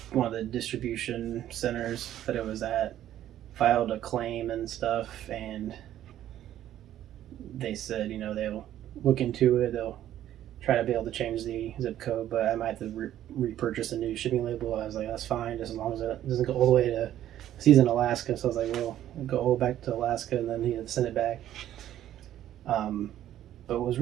one of the distribution centers that it was at, filed a claim and stuff, and they said, they'll look into it. They'll try to be able to change the zip code, but I might have to repurchase a new shipping label. I was like, that's fine, just as long as it doesn't go all the way to. He's in Alaska, so I was like, well, I'll go all back to Alaska, and then he had to send it back. But it was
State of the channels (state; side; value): quieter; left; 12.1 dB